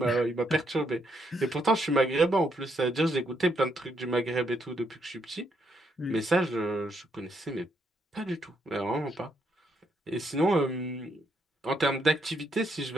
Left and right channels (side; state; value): both; normal; correlation 0.76